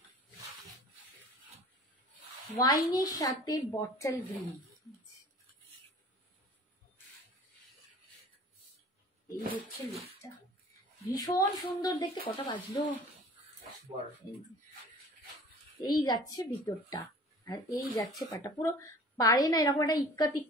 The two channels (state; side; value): normal; both; correlation 0.45